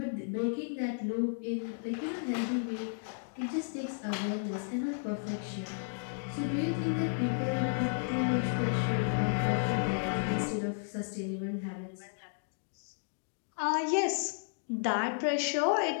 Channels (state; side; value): silent; right; digital silence